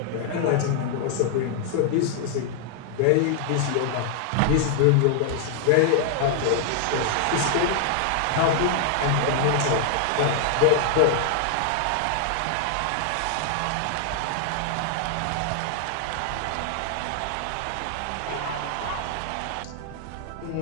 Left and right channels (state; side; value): different; both; correlation 0.00